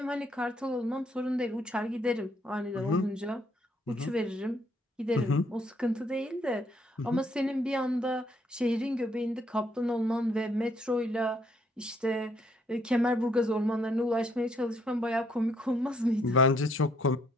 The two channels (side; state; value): both; normal; correlation 0.69